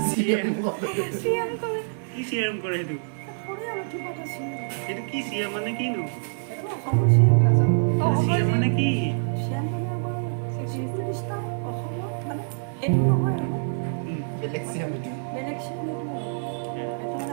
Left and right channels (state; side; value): silent; left; 57 dB below the other